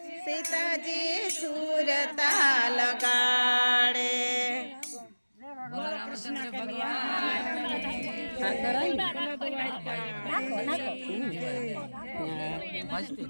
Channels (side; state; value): both; inverted; correlation -1.00